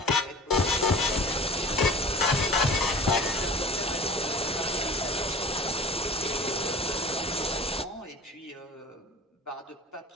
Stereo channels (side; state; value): both; normal; correlation 0.41